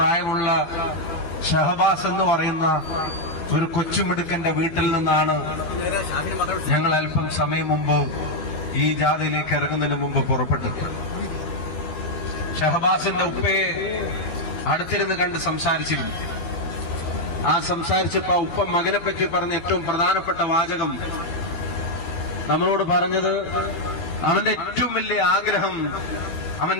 ഷഹബാസ് എന്ന് പറയുന്ന ഒരു കൊച്ചുമിടുക്കന്റെ വീട്ടിൽ നിന്നാണ് ഞങ്ങൾ അല്പം സമയം മുമ്പ് ഈ ജാഥയിലേക്ക് ഇറങ്ങുന്നതിന് മുമ്പ് പുറപ്പെട്ടത്. ഷഹബാസിന്റെ ഉപ്പയെ അടുത്തിരുന്ന് കണ്ട് സംസാരിച്ചിരുന്നു. ആ സംസാരിച്ചപ്പോ ഉപ്പ മകനെ പറ്റി പറഞ്ഞ ഏറ്റവും പ്രധാനപ്പെട്ട വാചകം നമ്മളോട് പറഞ്ഞത് അവന്റെ ഏറ്റവും വലിയ ആഗ്രഹം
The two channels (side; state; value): right; late; 13 ms